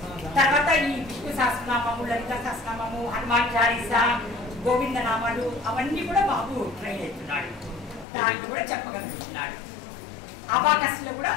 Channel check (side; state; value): right; drops out; at 8.1 s